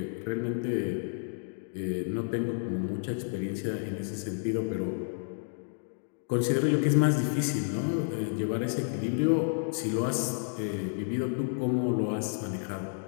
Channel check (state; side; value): silent; right; digital silence